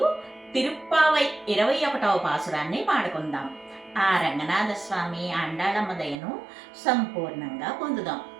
తిరుప్పావై 21వ పాసురాన్ని పాడుకుందాం. ఆ రంగనాథ స్వామి ఆండాళమ్మ దయను సంపూర్ణంగా పొందుదాం.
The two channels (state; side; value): drops out; left; at 6.2 s